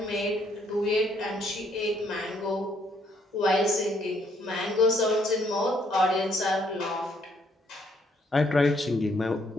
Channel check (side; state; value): both; normal; correlation 0.69